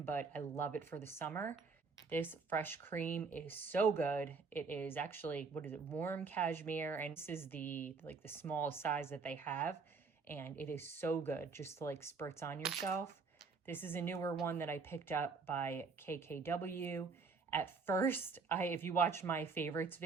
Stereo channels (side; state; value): left; quieter; 4.7 dB